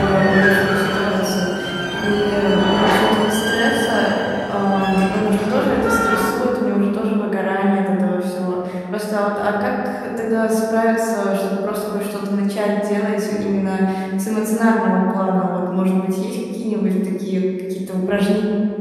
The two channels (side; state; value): both; identical; correlation 1.00